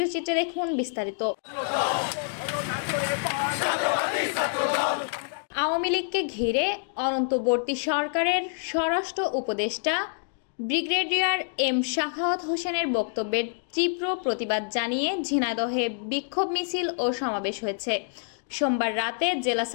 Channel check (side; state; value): right; silent; digital silence